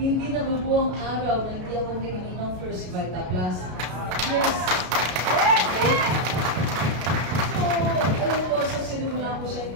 nabubuong araw na hindi ako nangyayon ng First Vita Plus. Yes! Okay? So, alam ko, sa sinimula ko siya yung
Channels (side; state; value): left; late; 33 ms